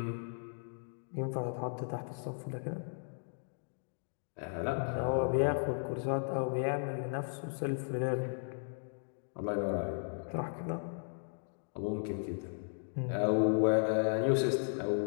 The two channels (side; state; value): right; silent; digital silence